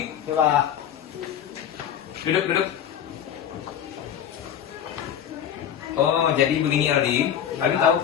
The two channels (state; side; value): quieter; right; 9.4 dB